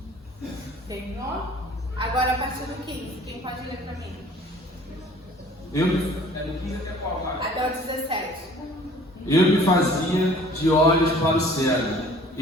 Terminou? Agora a partir do 15, quem pode ler para mim? Até o 17. Eu me fazia de olhos para o cego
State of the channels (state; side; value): normal; both; correlation 0.51